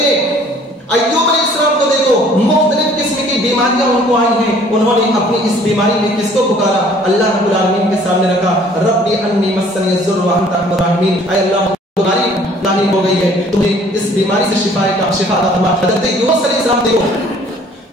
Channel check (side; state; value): both; normal; correlation 0.56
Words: अय्यूब अलैहिस्सलाम को देखो मुख्तलिफ किस्म की बीमारियां उनको आई हैं, उन्होंने अपनी इस बीमारी में किसको पुकारा, अल्लाह रब्बुल आलमीन के सामने रखा, रब्बी अन्नी मस्सनी ज़ुर्र व अंत अर्हमुर राहिमीन। ऐ अल्लाह तुम्हारी लानी हो गई है, तुम्हें इस बीमारी से शिफा अता फरमा। हज़रत यूनुस अलैहिस्सलाम देखो